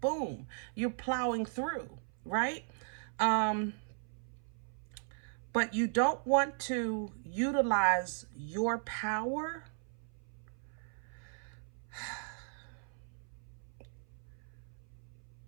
you're plowing through, right? But you don't want to utilize your power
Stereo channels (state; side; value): silent; left; 53 dB below the other